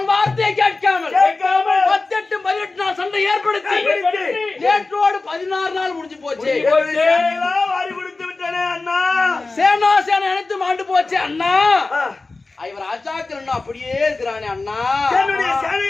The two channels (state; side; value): quieter; right; 3.5 dB